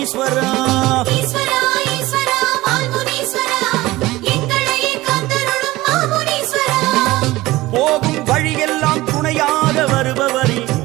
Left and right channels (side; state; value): left; quieter; 18.6 dB